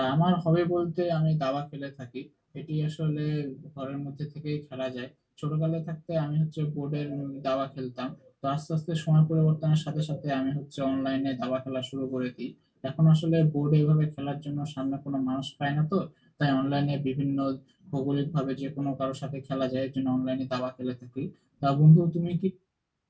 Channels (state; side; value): identical; both; correlation 1.00